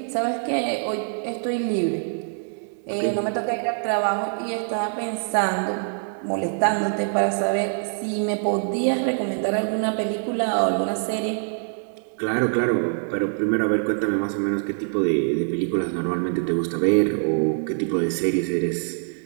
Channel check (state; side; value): silent; left; 62 dB below the other